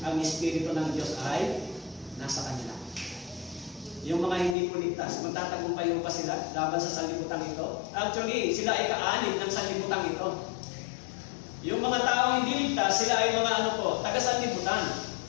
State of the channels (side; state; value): right; drops out; at 4.5 s